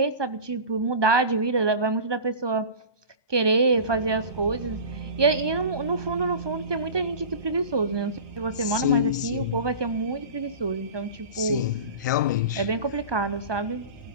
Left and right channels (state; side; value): inverted; both; correlation -0.33